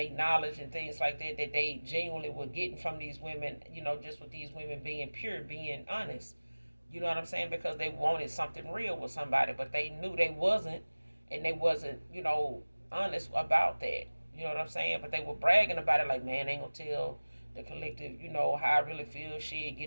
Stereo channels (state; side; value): inverted; both; correlation -1.00